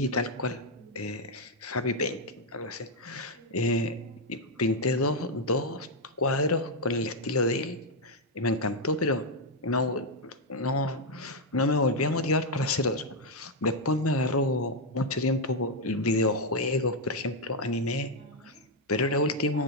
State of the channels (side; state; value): both; normal; correlation 0.01